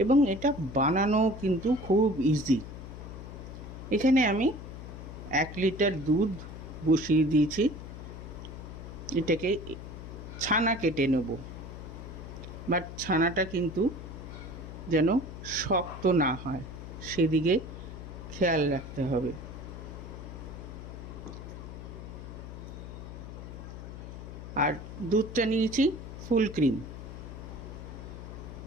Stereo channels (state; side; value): noise; left; hum, 11 dB below the sound